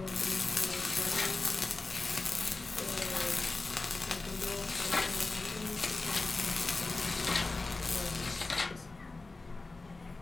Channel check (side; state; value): right; quieter; 3.5 dB